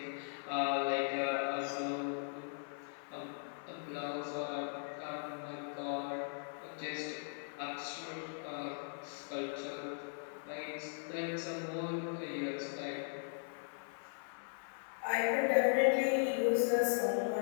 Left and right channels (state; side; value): silent; right; 52 dB below the other